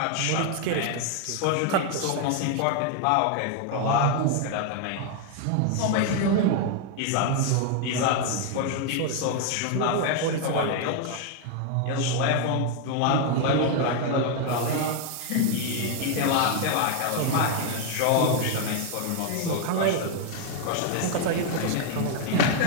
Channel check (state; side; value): different; both; correlation 0.00